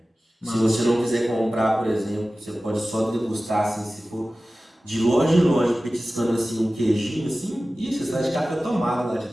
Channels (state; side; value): normal; both; correlation 0.96